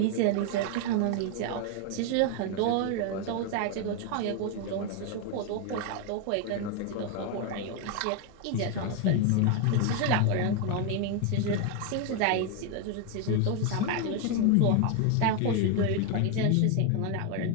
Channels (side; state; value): both; different; correlation 0.01